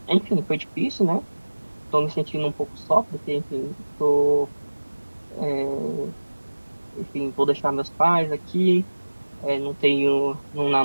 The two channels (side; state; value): both; inverted; correlation -1.00